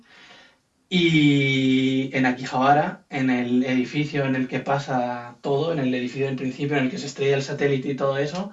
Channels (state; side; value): identical; both; correlation 1.00